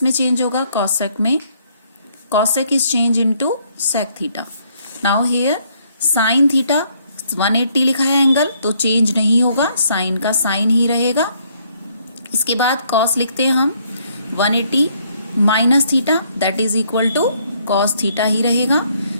में चेंज होगा, कॉसेक में, cosec is change into sec theta. Now here sine theta 180 लिखा है एंगल, तो चेंज नहीं होगा, साइन का साइन ही रहेगा। इसके बाद कॉस लिखते हैं हम 180 minus theta, that is equal to cos theta ही रहेगा।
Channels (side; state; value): both; inverted; correlation -0.68